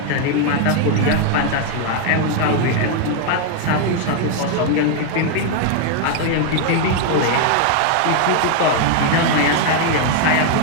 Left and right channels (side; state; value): both; different; correlation 0.00